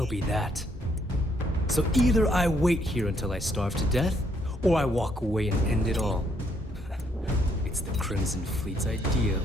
be that. So either I wait here until I starve to death, or I walk away and end it all. It's the Crimson Fleet's idea of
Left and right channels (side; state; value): both; normal; correlation 0.71